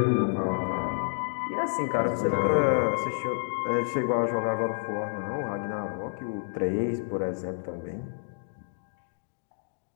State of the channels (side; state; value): right; silent; digital silence